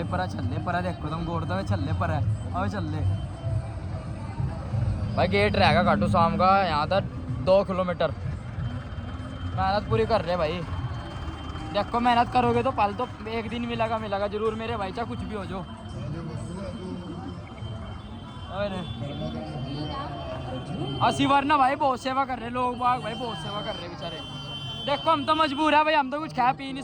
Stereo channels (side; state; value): both; identical; correlation 1.00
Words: परा चल परा देखो तुम गोड़ दे चल पर है आवे चल भाई। गेट रहेगा खाटू शाम का यहाँ तक 2 किलोमीटर। मेहनत पूरी कर रहे भाई। देखो मेहनत करोगे तो पल तो एक दिन मिलेगा जरूर मेरे भाई, चाहे कुछ भी हो जो। अरे असी वरना भाई बहुत सेवा कर रहे लोग बाग भाई, बहुत सेवा कर रहे बेचारे। देखो हम तो मजबूर है भाई, हम तो कुछ खा पी नहीं